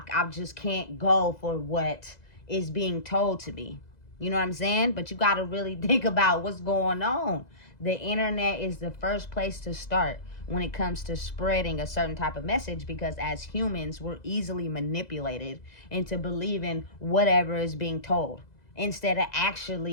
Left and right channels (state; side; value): late; right; 2.0 ms